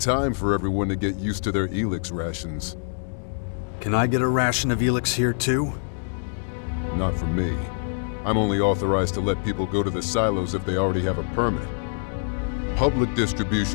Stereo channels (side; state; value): right; silent; digital silence